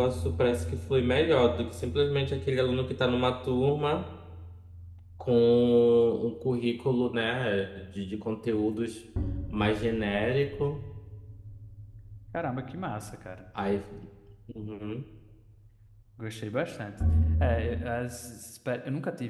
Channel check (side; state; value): both; identical; correlation 1.00